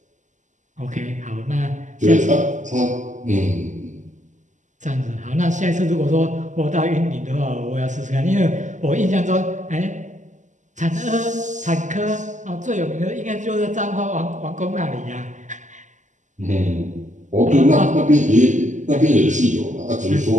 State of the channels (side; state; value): left; late; 0.36 ms